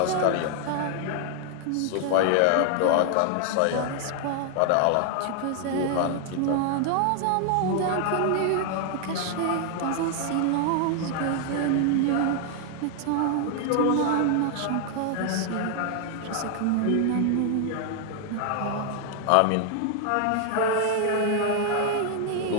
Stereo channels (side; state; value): both; different; correlation 0.00